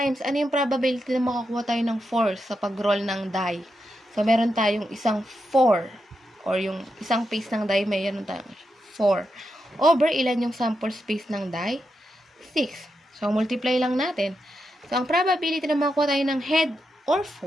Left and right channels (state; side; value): normal; both; correlation 0.86